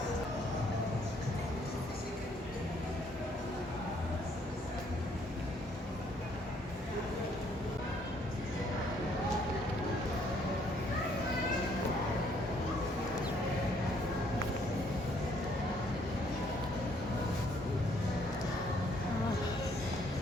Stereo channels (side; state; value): both; normal; correlation 0.66